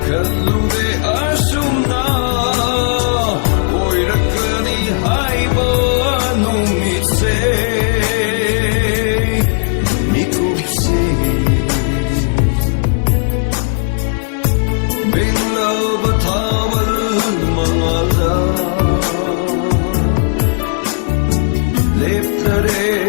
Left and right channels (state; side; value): silent; right; 61 dB below the other